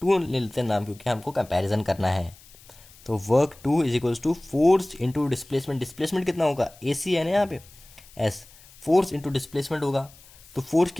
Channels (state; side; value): noise; left; hiss, 24 dB below the sound